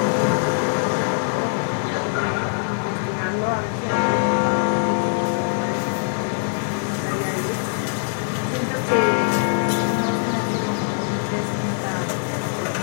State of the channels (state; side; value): silent; right; 60 dB below the other